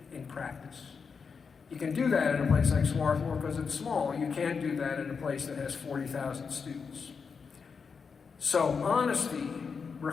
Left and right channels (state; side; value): quieter; right; 5.6 dB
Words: in practice. You can do that in a place like Schwartz because it's small. You can't do that in a place that has 40,000 students. So honesty